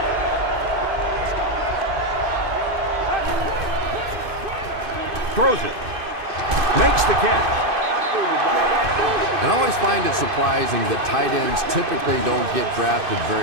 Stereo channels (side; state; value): left; late; 2.5 ms